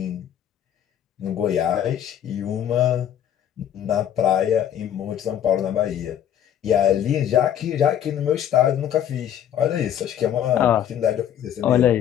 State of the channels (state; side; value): quieter; right; 10.1 dB